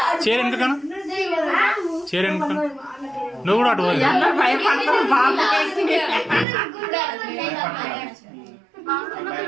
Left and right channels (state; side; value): drops out; left; at 6.5 s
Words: చీర వెనకను చీర వెనక నువ్వు కూడా అటు